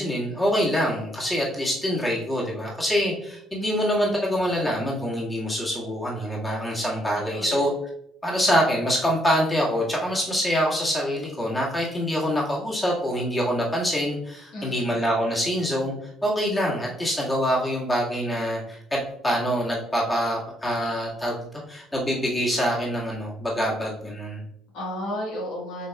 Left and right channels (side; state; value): both; normal; correlation 0.73